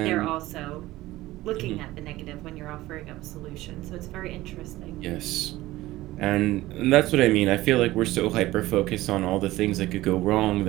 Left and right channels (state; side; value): quieter; left; 17.3 dB